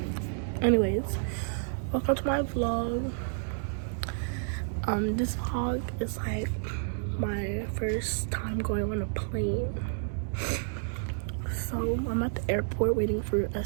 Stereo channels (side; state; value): left; silent; digital silence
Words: Anyways, welcome to my vlog. This vlog is like my first time going on a plane. So I'm at the airport waiting for us